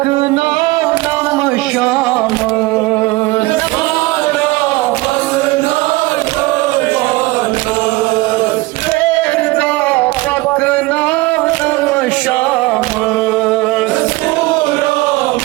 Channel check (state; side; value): quieter; left; 21.1 dB